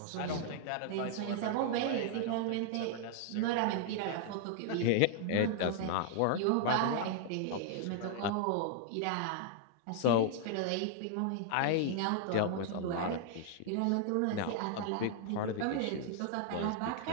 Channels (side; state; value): both; different; correlation -0.01